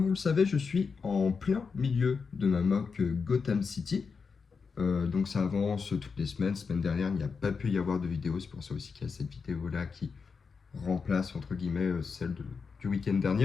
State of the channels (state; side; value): quieter; right; 5.3 dB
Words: vous le savez, je suis en plein milieu de ma mock Gotham City. Donc ça avance toutes les semaines. Semaine dernière, il n'y a pas pu y avoir de vidéo, c'est pour ça aussi qu'il y a cette vidéo-là qui remplace entre guillemets celle du week-end